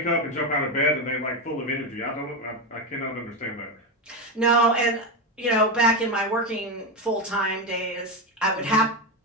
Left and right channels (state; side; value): normal; both; correlation 0.12